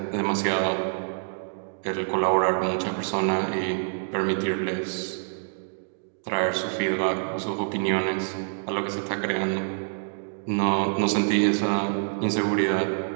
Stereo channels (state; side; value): silent; left; digital silence